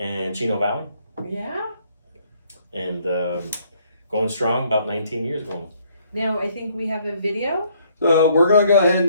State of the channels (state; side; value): inverted; both; correlation -0.66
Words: Chino Valley, Yeah. and going strong, about 19 years going. Now I think we have a video. So we're going to go